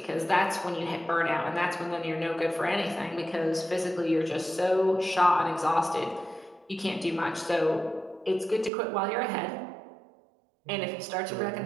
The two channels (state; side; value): drops out; left; at 8.7 s